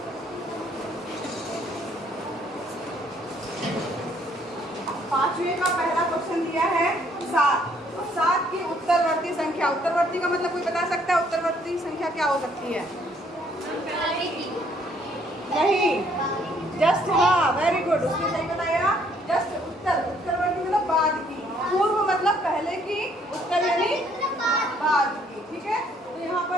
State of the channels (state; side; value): normal; both; correlation 0.65